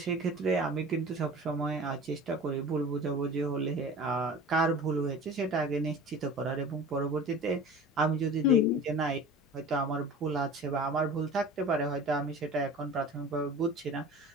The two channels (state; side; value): normal; both; correlation 0.38